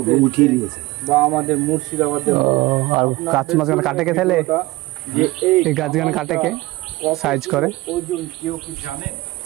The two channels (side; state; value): left; quieter; 20.4 dB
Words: উঠিয়ে দিয়েছে। বা আমাদের মুর্শিদাবাদের আর গাছ মাঝখানে কাটে কে তাহলে, এই গাছ গান কাটে কে সাইজ করে, ওজন কেউ কি জানে?